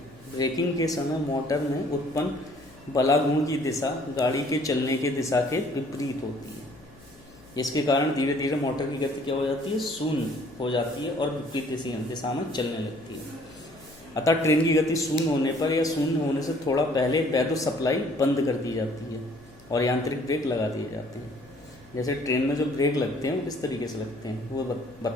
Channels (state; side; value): noise; left; hum, 24 dB below the sound